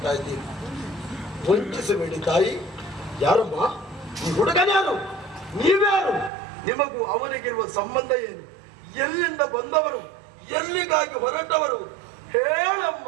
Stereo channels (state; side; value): drops out; left; at 6.3 s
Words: ಇದ್ದೀನಿ. ವಂಚಿಸಬೇಡಿ ತಾಯಿ. ಯಾರಮ್ಮ ಈ ಹುಡುಗನ್ಯಾರು? ನೀವ್ಯಾರು? ನಿಮಗೂ ಅವನಿಗಿರುವ ಸಂಬಂಧ ಏನು? ಎಲ್ಲಿಂದ ಬಂದವರು? ಎಲ್ಲಿಗಾಗಿ ಹೊರಟವರು? ಹೇಳಮ್ಮ,